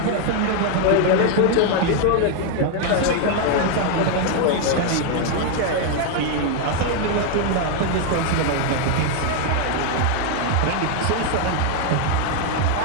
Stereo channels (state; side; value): different; both; correlation 0.01